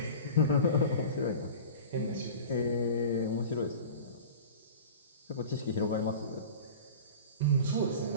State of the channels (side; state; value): both; inverted; correlation -0.36